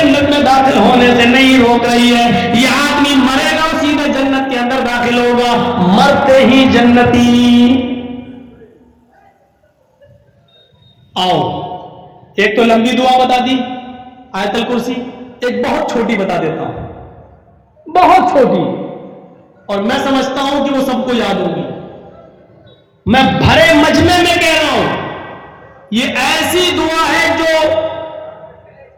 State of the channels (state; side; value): identical; both; correlation 1.00